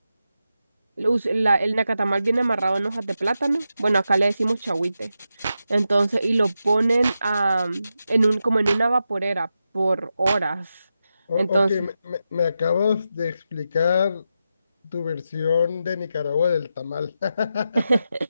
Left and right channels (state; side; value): inverted; both; correlation -0.88